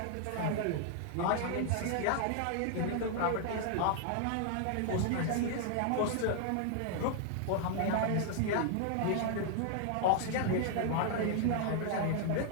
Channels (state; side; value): different; both; correlation 0.00